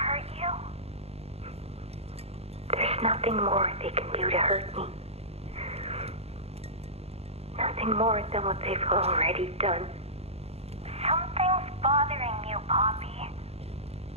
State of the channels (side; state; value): left; late; 0.30 ms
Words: you? There's nothing more they can do to hurt me. Nothing more than what they've already done. Something's bothering you, Poppy.